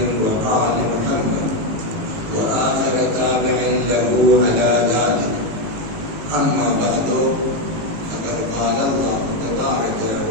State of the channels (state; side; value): late; left; 18 ms